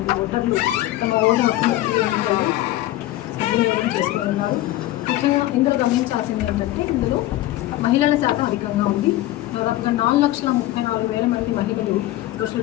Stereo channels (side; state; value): right; quieter; 15.8 dB